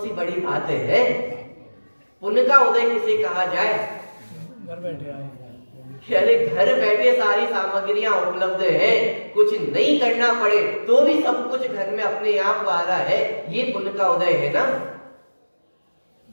बड़ी बात है? पुण्य का उदय किसे कहा जाए? घर बैठे आए, अरे घर बैठे सारी सामग्रियां उपलब्ध है, कुछ नहीं करना पड़े तो भी सब कुछ घर में अपने आप आ रहा है, ये पुण्य का उदय है ना।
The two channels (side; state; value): both; inverted; correlation -1.00